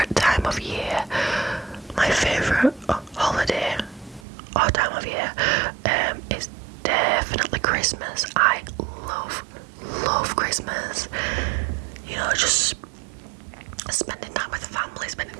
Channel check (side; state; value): left; drops out; at 4.2 s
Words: time of year. My favourite holiday or time of year is definitely Christmas. I love Christmas. You know, just spending time with family, spending